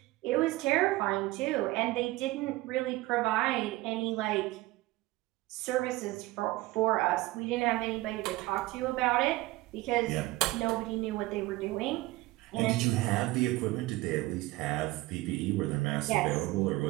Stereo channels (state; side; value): quieter; left; 19.3 dB